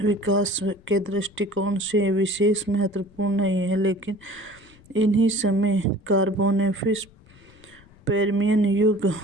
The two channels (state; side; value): noise; left; rumble, 26 dB below the sound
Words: विकास के दृष्टिकोण से विशेष महत्वपूर्ण नहीं है, लेकिन इन्हीं समय कार्बोनेफिस पर्मियन